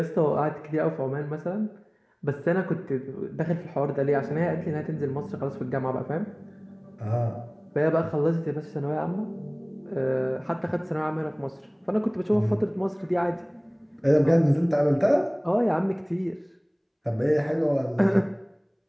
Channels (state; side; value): identical; both; correlation 1.00